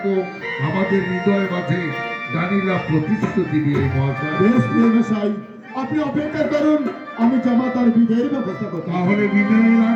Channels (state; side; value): identical; both; correlation 1.00